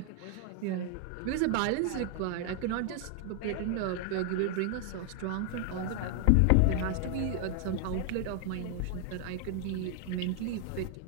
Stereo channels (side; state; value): both; different; correlation 0.00